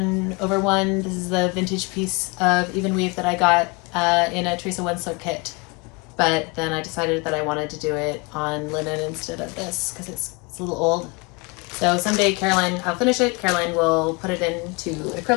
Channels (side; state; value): right; quieter; 28.4 dB